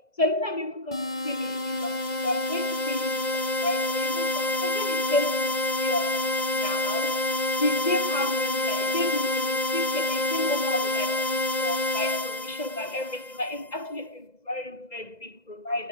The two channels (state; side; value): late; right; 2.0 ms